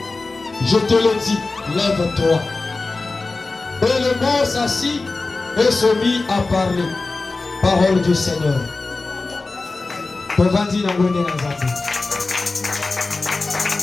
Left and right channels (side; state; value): right; quieter; 3.6 dB